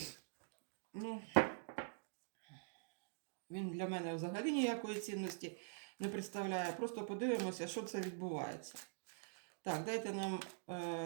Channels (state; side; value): silent; left; digital silence